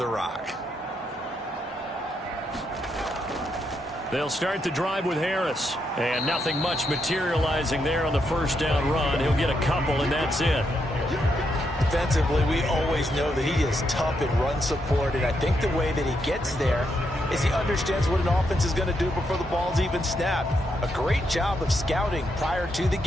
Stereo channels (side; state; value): both; normal; correlation 0.80